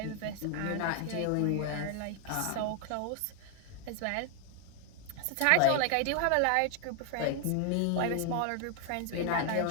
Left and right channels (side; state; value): both; different; correlation 0.00